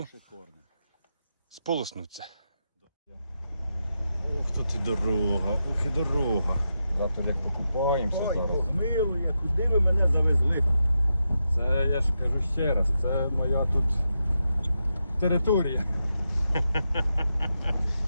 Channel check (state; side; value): inverted; both; correlation -0.86